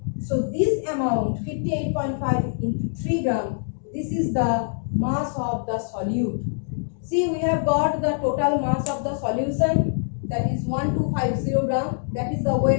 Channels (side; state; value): right; silent; digital silence